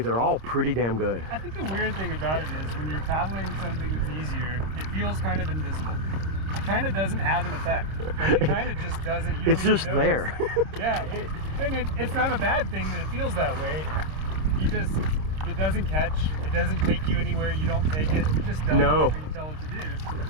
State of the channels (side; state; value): left; late; 26 ms